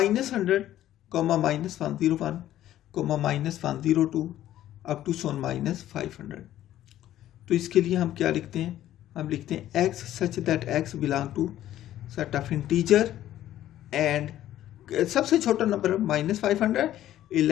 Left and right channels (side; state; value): right; quieter; 12.9 dB